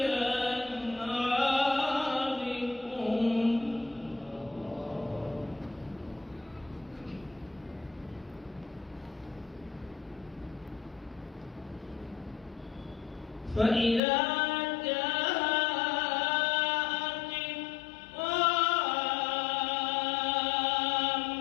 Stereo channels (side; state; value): right; drops out; at 14.0 s